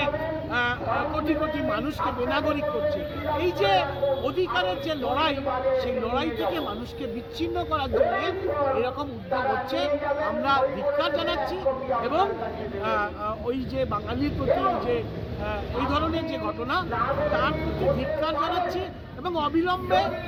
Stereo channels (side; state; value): both; identical; correlation 1.00